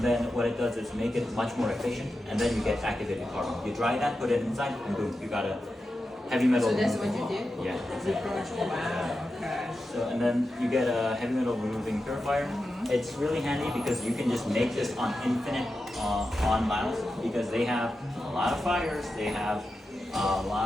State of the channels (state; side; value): normal; both; correlation 0.90